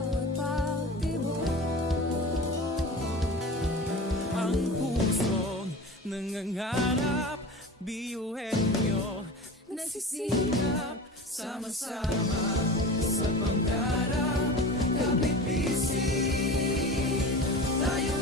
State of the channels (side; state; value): both; normal; correlation 0.33